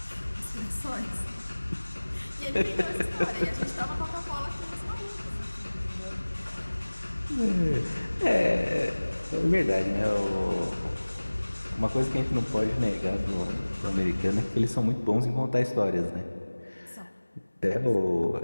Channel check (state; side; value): inverted; both; correlation -1.00